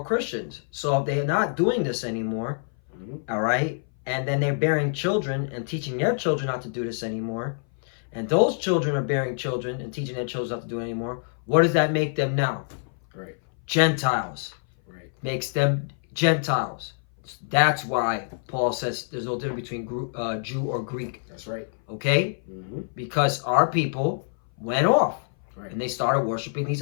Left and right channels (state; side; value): silent; right; 58 dB below the other